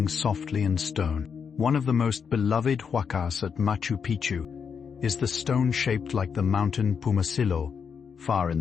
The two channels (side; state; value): right; quieter; 6.5 dB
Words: softly in stone. One of the most beloved huacas at Machu Picchu is the stone shaped like the mountain Pumasillo, far in